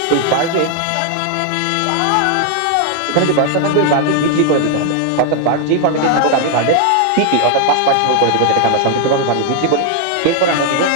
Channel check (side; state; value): both; different; correlation 0.00